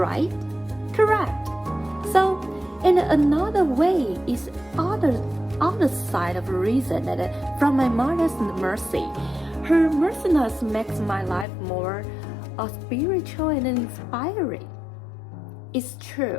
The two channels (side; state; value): right; drops out; at 11.5 s